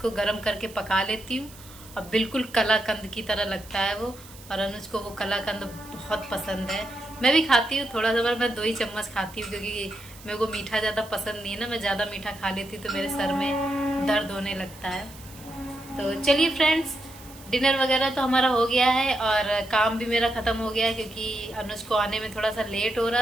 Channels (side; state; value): right; noise; hiss, 20 dB below the sound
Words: गर्म करके पका लेती हूँ, और बिल्कुल कलाकंद की तरह लगता है वो। और अनुज को वो कलाकंद बहुत पसंद है, मैं भी खाती हूँ थोड़ा सा, पर मैं 2 ही चम्मच खाती हूँ, क्योंकि मेरे को मीठा ज़्यादा पसंद नहीं है ना। मैं ज़्यादा मीठा खा लेती हूँ तो मेरे सर में दर्द होने लगता है। तो चलिए फ्रेंड्स, डिनर वगैरह तो हमारा हो गया है और काम भी मेरा ख़त्म हो गया है, क्योंकि अनुज को आने में थोड़ा सा लेट हो